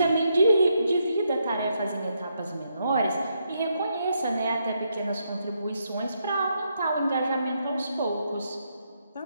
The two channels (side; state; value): both; inverted; correlation -0.79